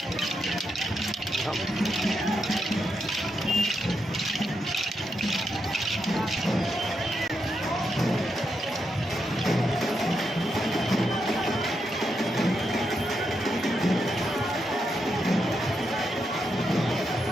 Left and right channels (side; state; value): both; normal; correlation 0.83